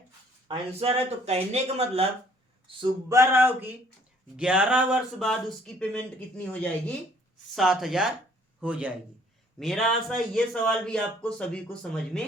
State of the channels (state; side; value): normal; both; correlation 0.60